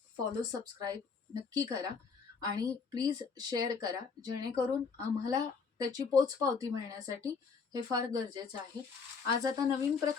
फॉलो सबस्क्राईब नक्की करा आणि प्लीज शेअर करा, जेणेकरून आम्हाला त्याची पोचपावती मिळण्यासाठी हे फार गरजेचं आहे. आज आता नवीन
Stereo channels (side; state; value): right; quieter; 5.3 dB